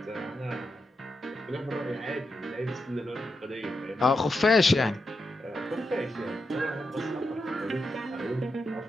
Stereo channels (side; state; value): both; normal; correlation 0.86